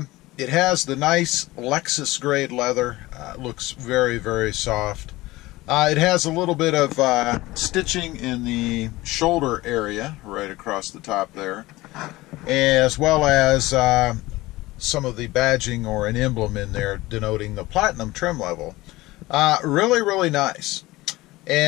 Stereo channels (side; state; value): right; quieter; 19.1 dB